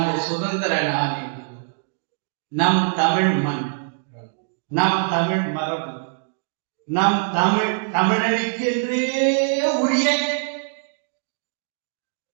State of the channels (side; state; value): left; silent; digital silence